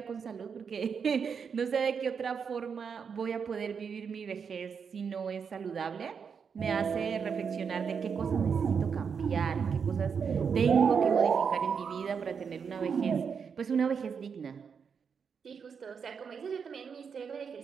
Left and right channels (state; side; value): quieter; left; 6.4 dB